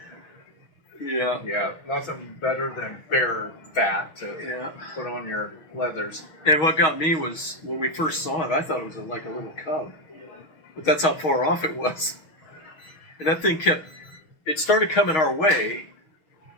Yeah. Yeah, nothing better than bear fat to Yeah. put on your leathers. And what got me was when we first saw it, I thought it was like a little cub. But that's how far off it was. And that thing it started coming our way,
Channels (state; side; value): late; right; 6.4 ms